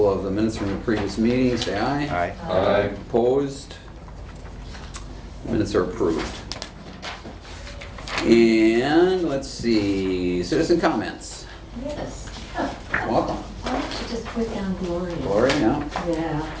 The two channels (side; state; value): both; identical; correlation 1.00